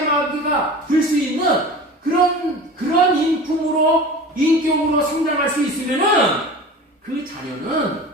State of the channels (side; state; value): both; normal; correlation 0.36